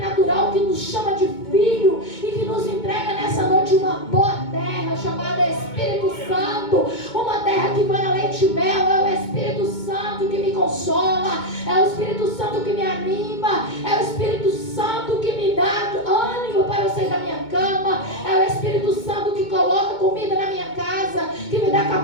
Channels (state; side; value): late; right; 2.2 ms